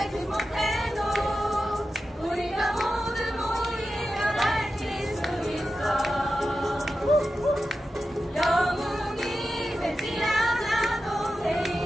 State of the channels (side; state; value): both; normal; correlation 0.92